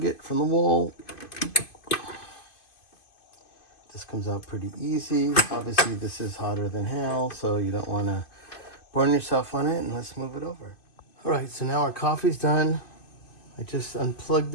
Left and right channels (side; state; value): right; late; 2.5 ms